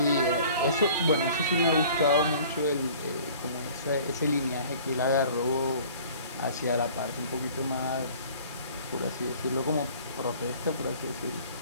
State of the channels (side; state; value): both; inverted; correlation -0.49